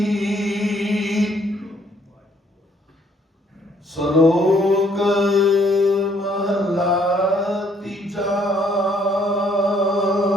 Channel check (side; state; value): both; normal; correlation 0.66